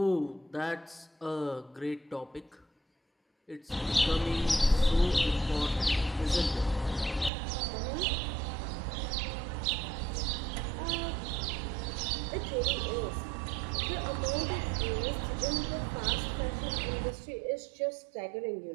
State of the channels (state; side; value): drops out; left; at 7.3 s